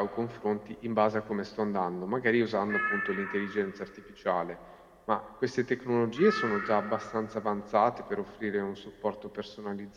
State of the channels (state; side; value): identical; both; correlation 1.00